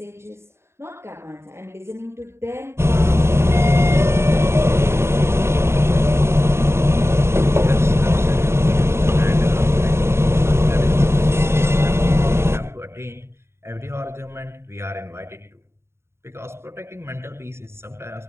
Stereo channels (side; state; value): left; late; 0.12 ms